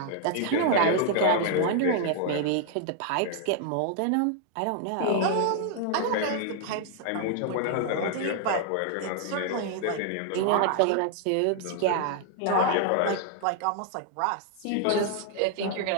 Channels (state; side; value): different; both; correlation 0.00